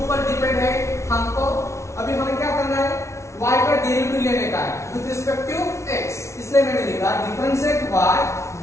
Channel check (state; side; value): late; right; 0.13 ms